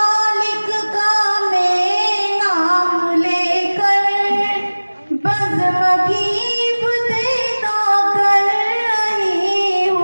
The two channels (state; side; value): inverted; both; correlation -1.00